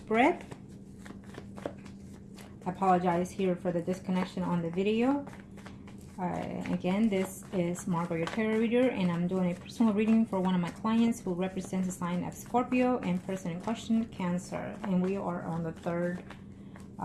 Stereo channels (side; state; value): both; identical; correlation 1.00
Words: I apologize here for the disconnection on the video. Again, this is Margourtarotreader, and I'm doing a personal reading for one of my clients who represents the sign of Scorpio and person in question, Cancer. And we are on the third